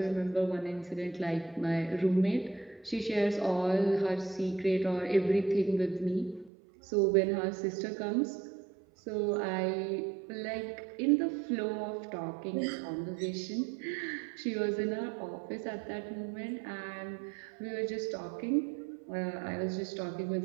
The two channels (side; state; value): left; drops out; at 6.5 s